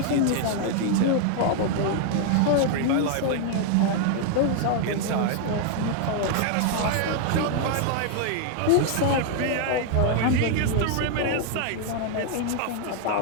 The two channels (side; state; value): both; different; correlation 0.00